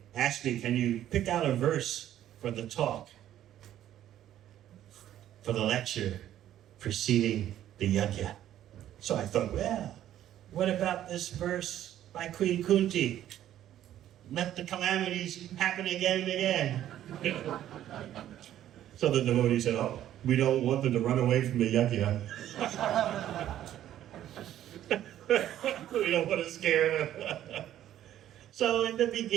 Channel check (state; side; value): quieter; left; 12.0 dB